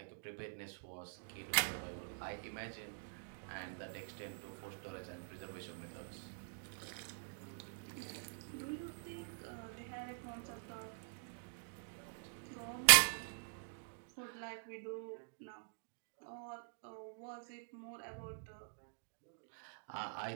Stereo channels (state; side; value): silent; left; digital silence